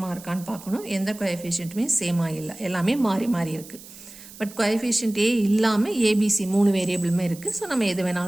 இருக்கான்னு பார்க்கணும். எந்த கோஎஃபிஷியன்ட்டுமே சேமாக இல்லை, எல்லாமே மாறி இருக்குது. பட் கோஎஃபிஷியன்ட் ஏ இல்லாமல் ஏபிசி 3 வேரியபிளுமே இருக்குது. ஸோ நம்ம எது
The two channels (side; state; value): right; noise; hiss, 18 dB below the sound